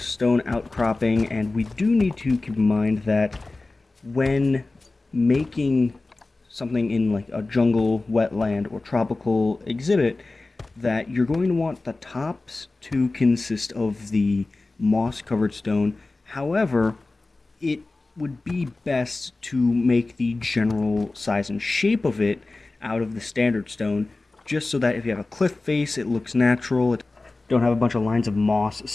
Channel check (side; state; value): right; quieter; 3.3 dB